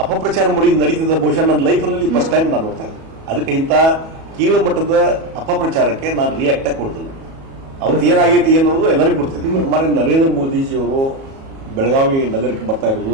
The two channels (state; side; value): late; left; 37 ms